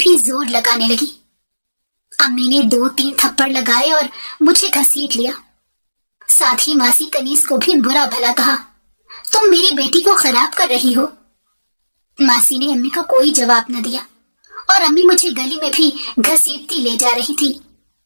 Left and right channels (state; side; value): inverted; both; correlation -1.00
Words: زور لگانے لگی۔ امی نے 2-3 تھپڑ لگائے اور مجھے گھسیٹ لیا، ساتھ ہی ماسی کنیز کو بھی برا بھلا کہا، تم میری بیٹی کو خراب کر رہی ہو۔ ماسی نے امی کا کوئی جواب نہ دیا اور امی مجھے گلی میں بھی گھسیٹتی لے جا رہی تھی